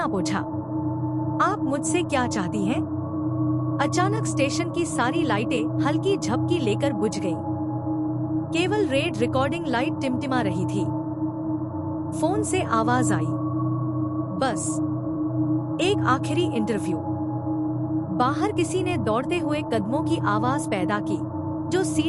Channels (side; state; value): both; identical; correlation 1.00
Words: पोंछा। आप मुझसे क्या चाहती हैं? अचानक स्टेशन की सारी लाइटें हल्की झपकी लेकर बुझ गईं। केवल रेड रिकॉर्डिंग लाइट टिमटिमा रही थी। फोन से आवाज आई, बस एक आखिरी इंटरव्यू। बाहर किसी ने दौड़ते हुए कदमों की आवाज पैदा की, जो